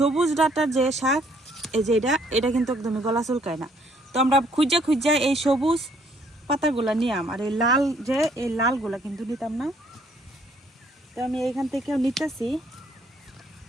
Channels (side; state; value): both; normal; correlation 0.65